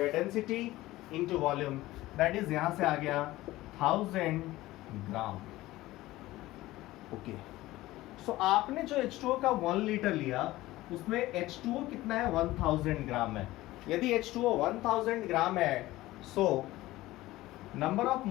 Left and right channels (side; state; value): right; quieter; 17.4 dB